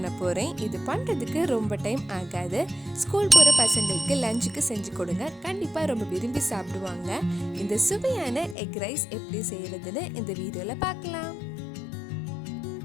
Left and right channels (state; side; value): drops out; right; at 8.6 s